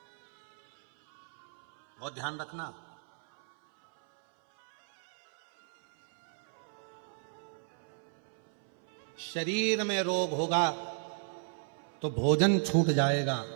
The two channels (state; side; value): silent; left; 55 dB below the other